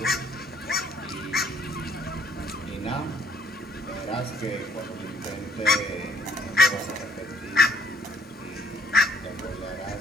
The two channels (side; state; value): both; normal; correlation 0.63